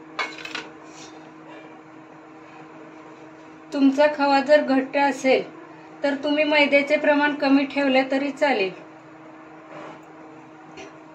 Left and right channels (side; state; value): both; identical; correlation 1.00